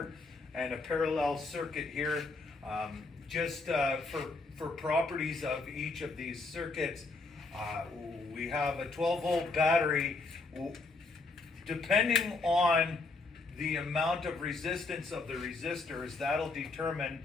and a parallel circuit here. Just for properties of each of these circuits, we have a 12 volt battery. Depending on the amount of resistance of the resistors, that'll determine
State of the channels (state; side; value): quieter; right; 3.7 dB